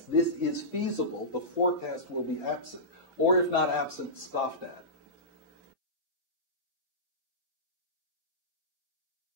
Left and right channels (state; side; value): normal; both; correlation -0.18